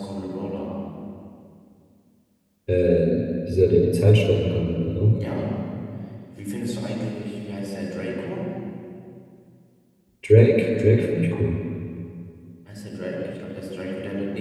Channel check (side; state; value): both; identical; correlation 1.00